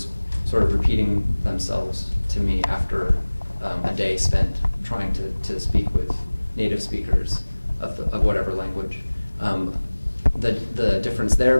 sort of repeating themselves to me after a day spent trying to speak with native speakers of whatever language. The difference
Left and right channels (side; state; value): both; inverted; correlation -1.00